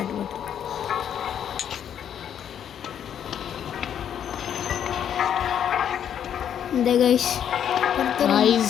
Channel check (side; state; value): right; quieter; 9.2 dB